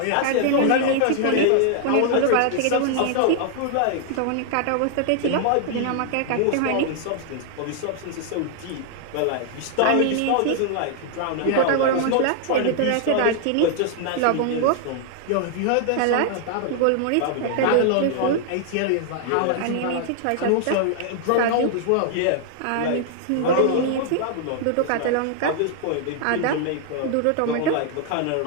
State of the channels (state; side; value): different; both; correlation 0.00